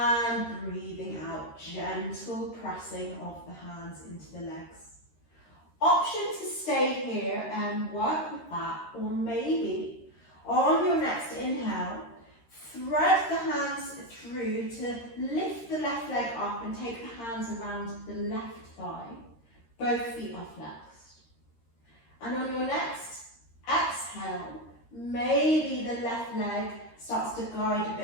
breathing out, gentle pressing of the hands into the legs. Option to stay here and work with that, or maybe on your next inhale, thread the hands through to lift the left leg up and take the hands around the left thigh. Both feet are flexed. And on your next exhale, maybe the left leg starts to guide a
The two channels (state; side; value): late; right; 13 ms